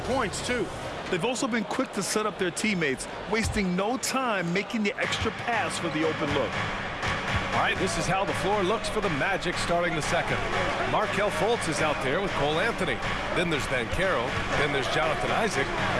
points, too. They've also been quick to set up their teammates, wasting no time making the extra pass for the open look. All right, this is how the floor looks for the Magic starting the second. Markelle Fultz is out there with Cole Anthony. Then there's Banchero. Then there's Jonathan Isaac.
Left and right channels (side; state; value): both; identical; correlation 1.00